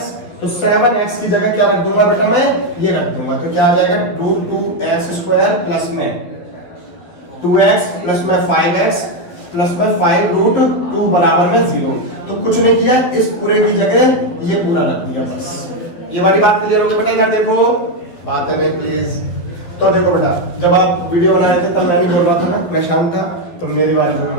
तो 7x की जगह क्या रख दूंगा बेटा मैं ये रख दूंगा, तो क्या आ जाएगा √2x² प्लस में 2x प्लस में 5x प्लस में 5√2 बराबर में 0। तो कुछ नहीं किया, इस पूरे की जगह ये पूरा रख दिया, बस ये वाली बात क्लियर हो गई बेटा। इधर देखो बात है नहीं प्लीज। तो देखो बेटा, जब आप वीडियो बना रहे थे तब मैं नहीं बोल रहा था ना, मैं शांत था, तो मेरी बात भी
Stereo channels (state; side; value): late; right; 12 ms